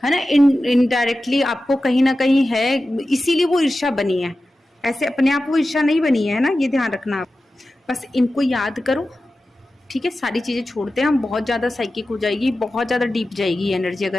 है ना, इनडायरेक्टली आपको कहीं ना कहीं है, इसीलिए वो ईर्ष्या बनी है। ऐसे अपने आप वो ईर्ष्या नहीं बनी है ना, ये ध्यान रखना आप। बस इनको याद करो, ठीक है। सारी चीज़ें छोड़ते हैं हम, बहुत ज़्यादा साइकिक हो जाएगी, बहुत ज़्यादा डीप जाएगी एनर्जी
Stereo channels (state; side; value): normal; both; correlation 0.94